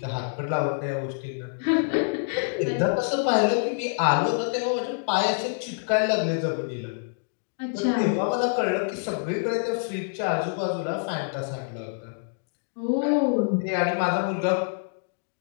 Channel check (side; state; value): right; silent; digital silence